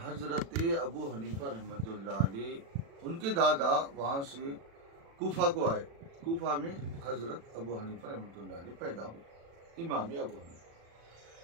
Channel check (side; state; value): left; late; 36 ms